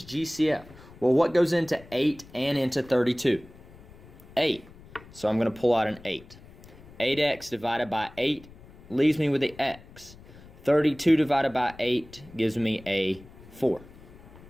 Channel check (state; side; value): noise; left; rumble, 21 dB below the sound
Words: GCF. Well, what goes into 8 and into 32? 8. So I'm going to pull out an 8. 8x divided by 8 leaves me with the x. 32 divided by 8 gives me a 4.